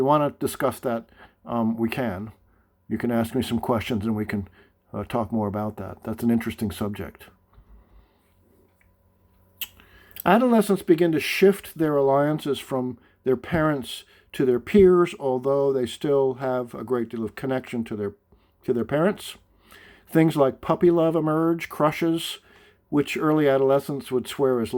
want to discuss that, we can. You can ask me some questions and we can talk more about that. That's an interesting subject. Adolescents begin to shift their alliances from their parents to their peers, although they still have a great deal of connection to their parents. Things like puppy love emerge, crushes, which early adolescents would swear is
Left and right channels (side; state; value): both; identical; correlation 1.00